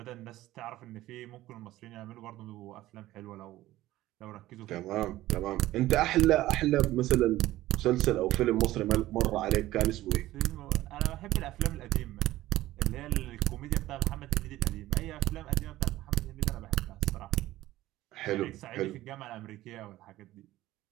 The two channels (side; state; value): left; quieter; 15.9 dB